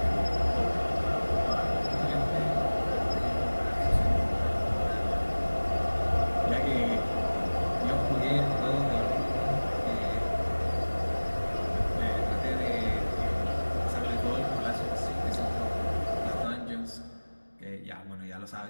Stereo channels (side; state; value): both; inverted; correlation -1.00